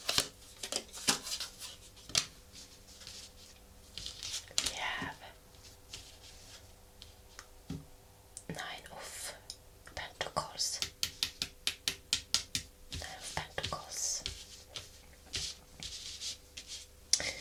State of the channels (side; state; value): both; identical; correlation 1.00